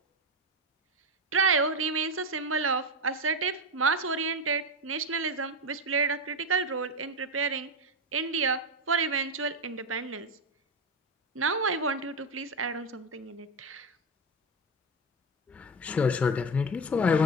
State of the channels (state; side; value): normal; both; correlation 0.13